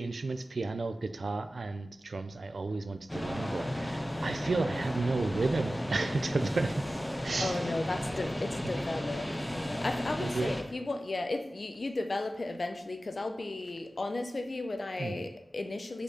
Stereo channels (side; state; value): both; normal; correlation 0.95